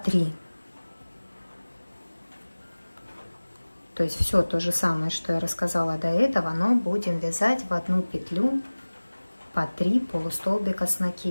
То есть все то же самое, что я рассказала до этого, но будем вязать в одну петлю по 3 полустолбика с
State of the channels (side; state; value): both; inverted; correlation -1.00